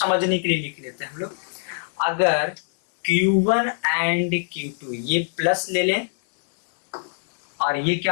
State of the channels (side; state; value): right; silent; 63 dB below the other